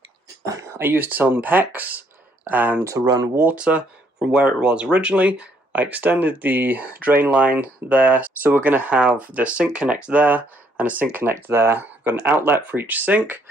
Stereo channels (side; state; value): both; normal; correlation 0.68